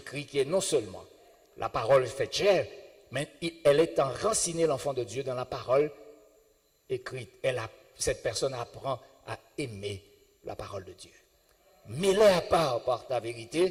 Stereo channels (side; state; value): both; identical; correlation 1.00